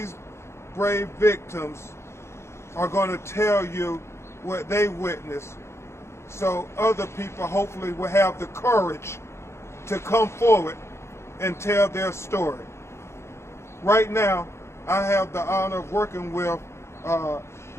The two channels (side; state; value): right; late; 0.13 ms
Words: brave victims are going to tell you what they witnessed, so other people hopefully will have the courage to come forward and tell their story. Right now, I have the honor of working with